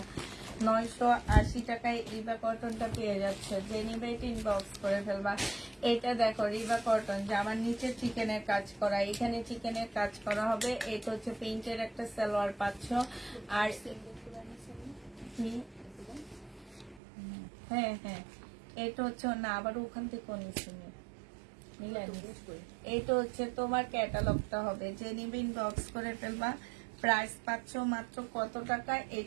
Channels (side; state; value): left; drops out; at 17.0 s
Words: 980 টাকায় রিবা কটনটা পেয়ে যাচ্ছে। যে নিবে এটা ইনবক্স করে ফেলবা। এটা দেখো, রিবা কটন, জামার নিচে চিকেনের কাজ করা, এখানে চিকেনের কাজ করা হবে। এটা হচ্ছে প্রিন্টের একটা সালোয়ার পাচ্ছ, আর কি হ্যাঁ হ্যাঁ, এটা হচ্ছে না, আবার ওখান থেকে নিচ্ছি এইটা হচ্ছে তোমার ক্যাটালগটা হবে, যে নিবে ইনবক্স করে ফেলবা। প্রাইস পাচ্ছ মাত্র কত টাকা,